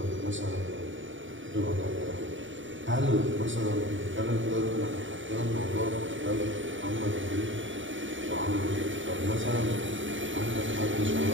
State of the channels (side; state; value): left; late; 0.56 ms